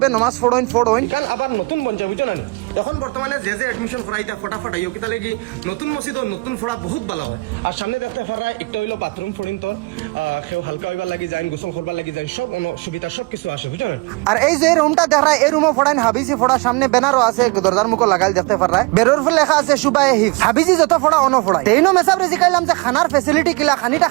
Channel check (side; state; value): left; quieter; 26.5 dB